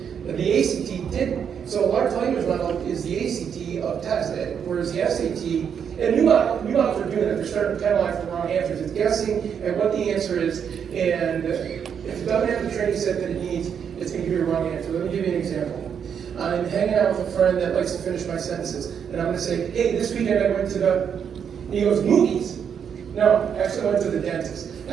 The ACT didn't. So a large language model is the ACT of tests, whereas the SAT, and new models are doing that. They're starting to penalize for wrong answers. It's guessing at what the answer is, and if it doesn't have the training set that it needs, it's going to give you a wrong answer. Let me give you an example. I'm hanging out with a friend that likes to finish my sentences, and I'm going to say, hey, this weekend I went to and he goes, movies? No, actually I went to the dentist.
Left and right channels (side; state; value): left; quieter; 7.6 dB